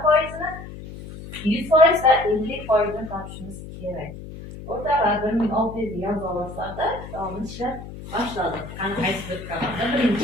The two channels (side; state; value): left; noise; hum, 13 dB below the sound